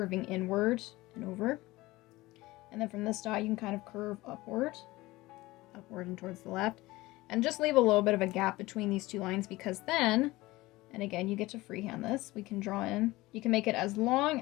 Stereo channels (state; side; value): quieter; right; 19.5 dB